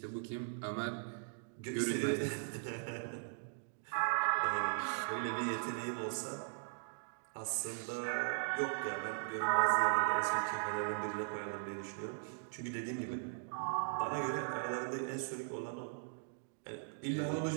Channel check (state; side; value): silent; left; digital silence